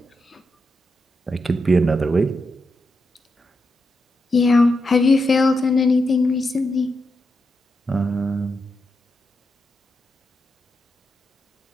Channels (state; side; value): normal; both; correlation 0.85